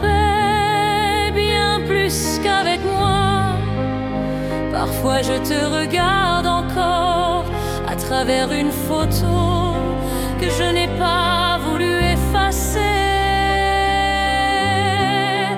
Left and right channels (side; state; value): both; identical; correlation 1.00